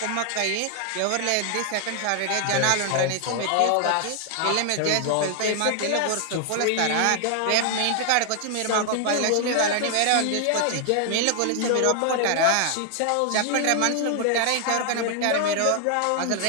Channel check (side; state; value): both; different; correlation 0.00